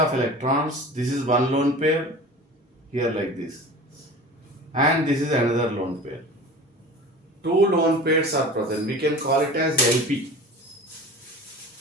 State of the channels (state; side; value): normal; both; correlation 0.37